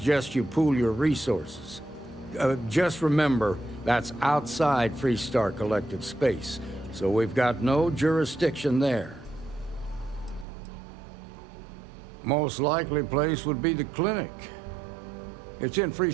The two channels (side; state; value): left; drops out; at 10.5 s